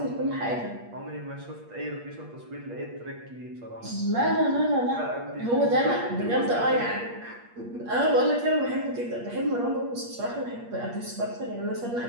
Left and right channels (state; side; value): late; left; 8.5 ms